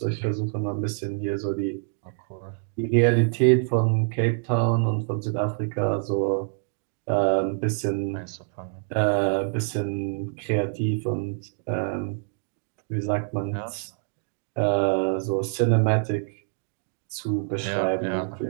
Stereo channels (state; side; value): silent; left; digital silence